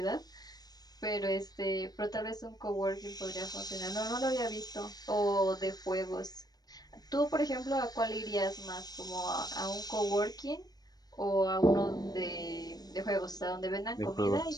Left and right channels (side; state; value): right; late; 0.19 ms